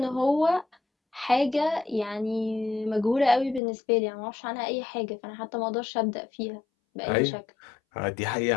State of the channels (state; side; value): drops out; right; at 3.6 s